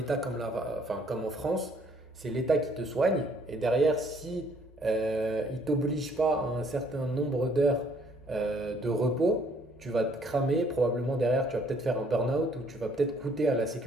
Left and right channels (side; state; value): both; normal; correlation 0.63